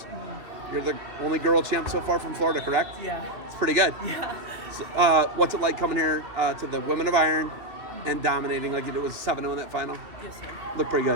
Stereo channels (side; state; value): left; late; 2.7 ms